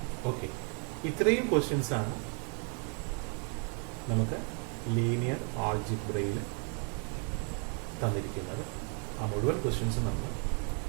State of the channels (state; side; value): quieter; left; 39.8 dB